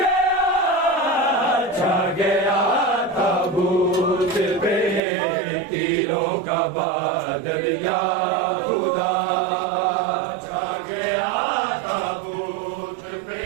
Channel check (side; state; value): left; drops out; at 5.0 s